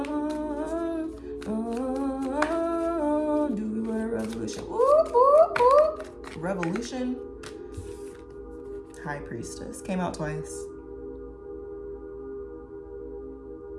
Do we want a revolution? Ooh. Revolution. High Priestess. Came out twice.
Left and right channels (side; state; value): both; identical; correlation 1.00